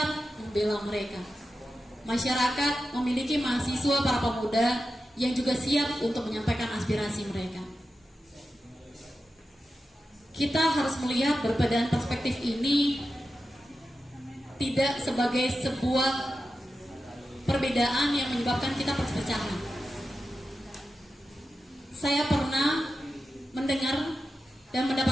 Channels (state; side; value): normal; both; correlation 0.91